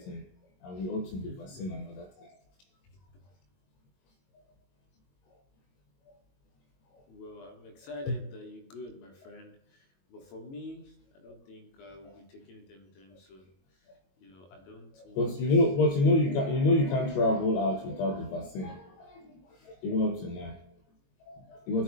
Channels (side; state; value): right; late; 22 ms